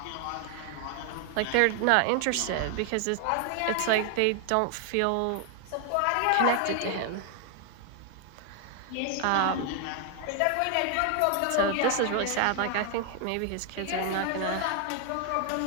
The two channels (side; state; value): both; different; correlation 0.00